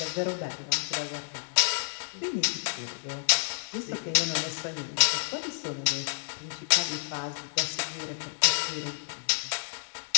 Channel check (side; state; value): right; silent; digital silence